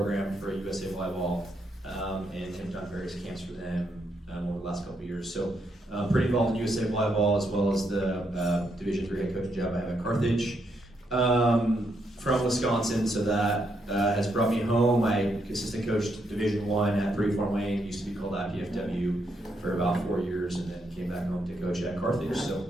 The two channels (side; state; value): both; normal; correlation 0.78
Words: for USA Volleyball, and have done various camps for them over the last couple of years. So pretty involved in USA Volleyball, as well as the Division III head coaching job I have at Carthage. From Wisconsin, so that has brought me home. I assistant coached Division I at 3 Fort Wayne, used to be called IPFW, for about 4 years, and then came back home to coach at Carthage. So